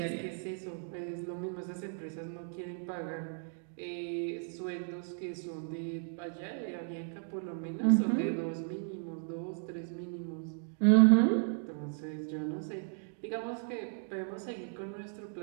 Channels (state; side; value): silent; left; 54 dB below the other